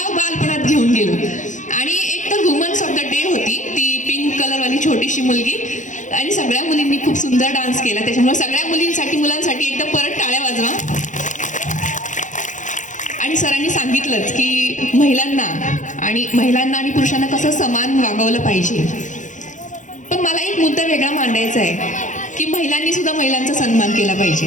बालपणात घेऊन गेलो. आणि एक तर वुमन्स ऑफ द डे होती, ती पिंक कलरवाली छोटीशी मुलगी, आणि सगळ्या मुलींनी खूप सुंदर डान्स केला. त्याच्यामुळे सगळ्या मुलांसाठी एकदा परत टाळ्या वाजवा. आणि सरांनी सांगितलंच की महिलांना आणि पुरुषांना कसं समान वागवलं पाहिजे. पण मला एक मुद्दा वेगळा मांडायचा आहे की महिलांनी सुद्धा महिलांचा सन्मान केला पाहिजे.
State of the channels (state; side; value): late; right; 0.36 ms